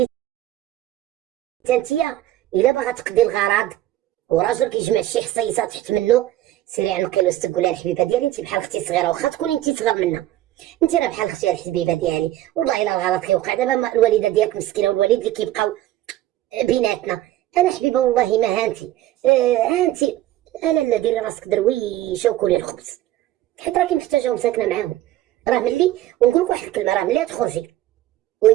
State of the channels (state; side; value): quieter; left; 14.3 dB